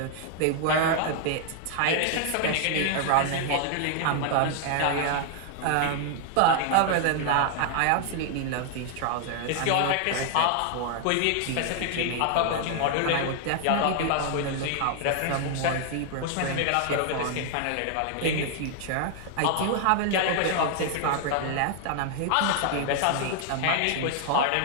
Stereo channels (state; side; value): different; both; correlation 0.00